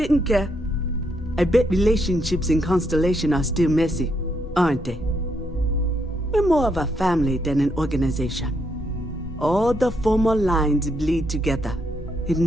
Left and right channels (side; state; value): both; normal; correlation 0.77